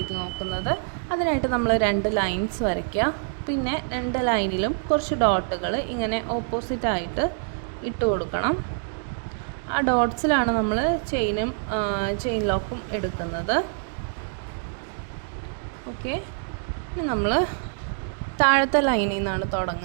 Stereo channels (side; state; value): left; silent; digital silence